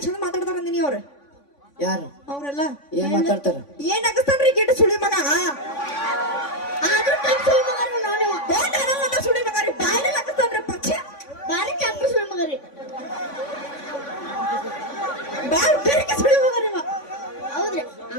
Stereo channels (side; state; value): right; late; 3.5 ms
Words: ಚಂದ ಮಾತಾಡ್ತಾರ ಅಂದಿನಿ ಅವ್ರು ಯಾರು ಅವ್ರೆಲ್ಲ ಏನ್ ಮಾತಾಡ್ತಾರ ಏನ್ ಅಗಸ್ತಾನ್ರಿ ಗಿಡ ಸುಳಿ ಮಗ ಸುಳಿ ಮಗ ರೀ ಬಾಯಿ ಅಗಸ್ತಾನ್ರಿ ಪಕ್ಷ ಬಾರಿ ಚಾಪ ಸುಳಿ ಮಗ ರೀ ಬಾರಿ ಬೇರೆ ಸುಳಿ ಮಗ ರೀ ಹೌದ್ರಿ